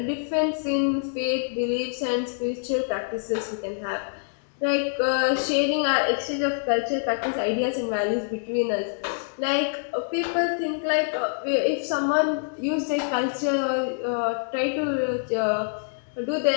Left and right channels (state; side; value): silent; right; digital silence